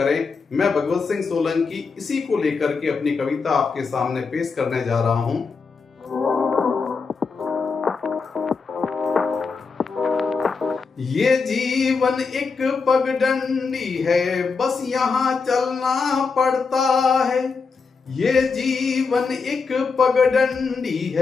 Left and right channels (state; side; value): quieter; right; 4.9 dB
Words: मैं भगवत सिंह सोलंकी इसी को लेकर के अपनी कविता आपके सामने पेश करने जा रहा हूं। ये जीवन एक पगडंडी है, बस यहाँ चलना पड़ता है। ये जीवन एक पगडंडी